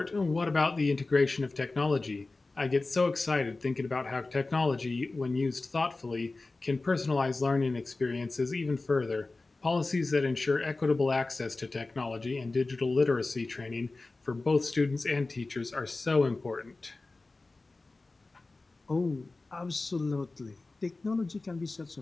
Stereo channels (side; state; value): right; quieter; 3.4 dB